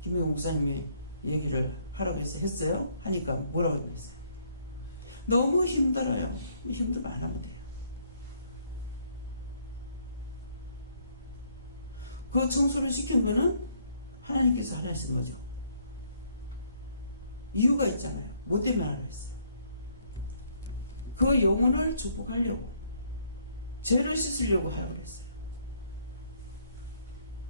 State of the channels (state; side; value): inverted; both; correlation -0.67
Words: 김혜경 목사님이 얘기를 하라고 해서 했어요. 하니까 뭐라고 했어요? 너무 힘들어요. 힘들면 안 하면 돼요. 그 청소를 시킨 거는 하나님께서 하라 하신 거죠. 이유가 있잖아요. 뭐 때문에 하라 했어요? 그 영혼을 축복하려고, 죄를 씻으려고 하라고 그랬어요.